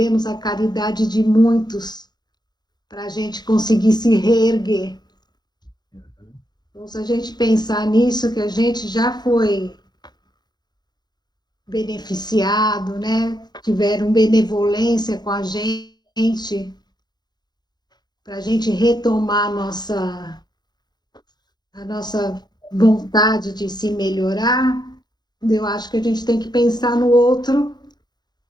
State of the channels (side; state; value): right; late; 0.20 ms